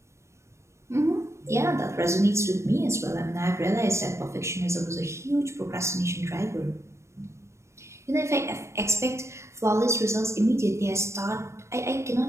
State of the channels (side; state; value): left; late; 0.14 ms